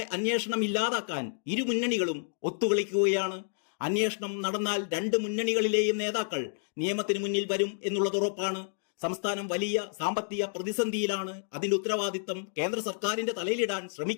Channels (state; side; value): silent; right; digital silence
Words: അന്വേഷണം ഇല്ലാതാക്കാൻ ഇരു മുന്നണികളും ഒത്തുകളിക്കുകയാണ്. അന്വേഷണം നടന്നാൽ 2 മുന്നണികളിലെയും നേതാക്കൾ നിയമത്തിന് മുന്നിൽ വരും എന്നുള്ളത് ഉറപ്പാണ്. സംസ്ഥാനം വലിയ സാമ്പത്തിക പ്രതിസന്ധിയിലാണ്. അതിന്റെ ഉത്തരവാദിത്തം കേന്ദ്ര സർക്കാരിന്റെ തലയിലിടാൻ